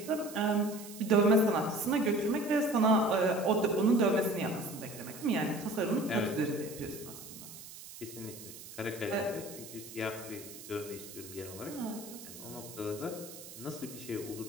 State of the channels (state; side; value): noise; right; hiss, 14 dB below the sound